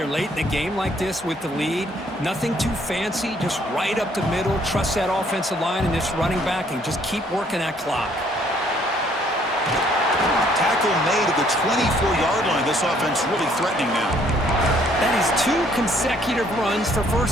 late in the game like this with the lead. Nothing too fancy, just right up the middle. Trust that offensive line and this running back and just keep working that clock. Tackle made at the 24-yard line. This offense really threatening now. That is 2 consecutive runs for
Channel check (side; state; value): both; normal; correlation 0.64